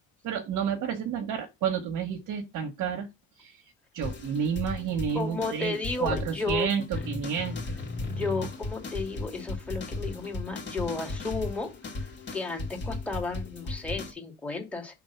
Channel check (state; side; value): normal; both; correlation 0.45